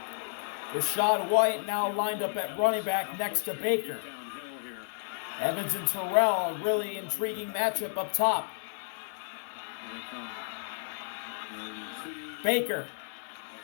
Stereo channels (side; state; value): right; silent; 57 dB below the other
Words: Rashad White now lined up at running back next to Baker. Downhill here. Evans and Terrell, a really intriguing matchup up top. Here they come. Baker,